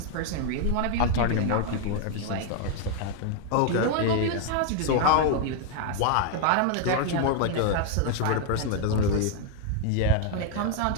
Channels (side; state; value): both; different; correlation 0.00